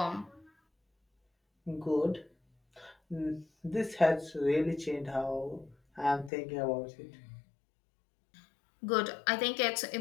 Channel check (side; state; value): right; drops out; at 6.3 s